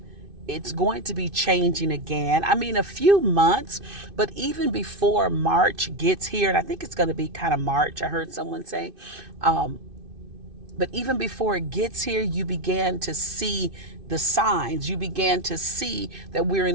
it's going to be changing again. I mean, a few months, but even before March gets here, and I think it's going to be kind of March, I heard someone say, but even before it gets here, you began to see the signs. You began to see that we're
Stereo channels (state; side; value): late; left; 2.5 ms